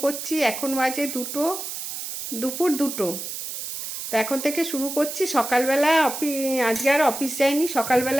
করছি। এখন বাজে দুপুর 2টো। তো এখন থেকে শুরু করছি। সকালবেলা আজকে আর অফিস যাইনি।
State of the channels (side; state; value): right; noise; hiss, 6 dB below the sound